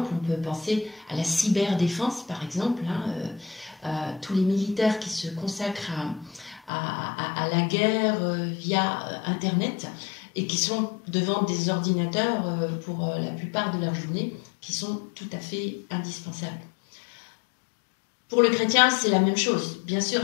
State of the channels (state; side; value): drops out; right; at 6.7 s